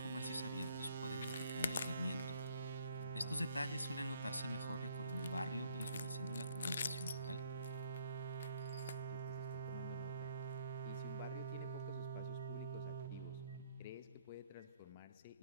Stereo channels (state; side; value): inverted; both; correlation -0.65